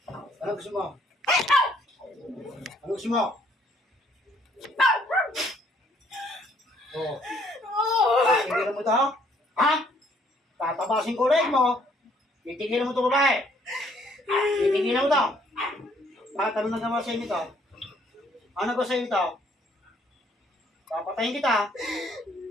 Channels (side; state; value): both; normal; correlation 0.65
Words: Ano gusto mo? Ano gusto mo? Oh. Titigilan mo ito? Ha? Tatabasin ko ulit mo. Titigilan mo ito babae. Titigilan mo ito. Bakit ano nagawa sa'yo nito? Ano nagawa sa'yo nito? Papatayin kita.